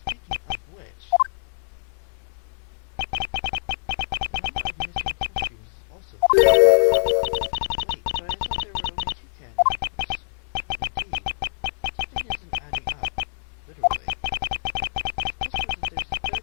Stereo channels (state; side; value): silent; right; 62 dB below the other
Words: of which, the number of missing costumes is also 3. Wait, but I thought there were only 2 kidnappers. Indeed, something isn't adding up, literally. It's possible that there's a